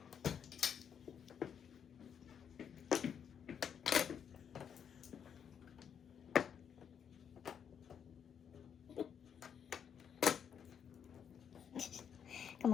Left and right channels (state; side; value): quieter; right; 7.9 dB